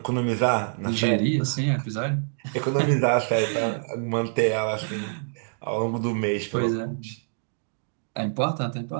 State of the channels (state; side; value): silent; left; digital silence